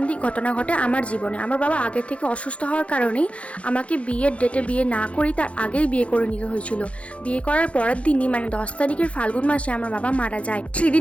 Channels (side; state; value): right; late; 0.062 ms